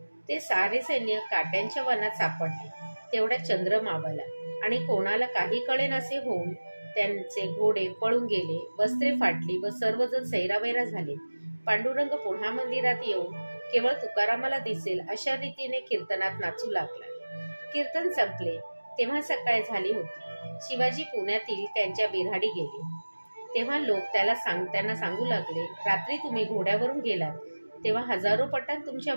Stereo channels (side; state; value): both; inverted; correlation -1.00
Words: ते सारे सैन्य काट्यांच्या वनात सापडले. तेवढ्या चंद्र मावळला आणि कोणाला काही कळेनासे होऊन त्यांचे घोडे पळून गेले. वस्त्रे फाटली व सर्वजण सैरावैरा झाले. पांडुरंग पुन्हा मंदिरात येऊन केवळ तुकारामाला दिसेल अशा रीतीने कीर्तनात नाचू लागला. कीर्तन संपले तेव्हा सकाळ झाली होती. शिवाजी पुण्यातील त्यांच्या बिऱ्हाडी गेले. तेव्हा लोक त्यांना सांगू लागले, रात्री तुम्ही घोड्यावरून गेलात तेव्हा हजारो पठाण तुमच्या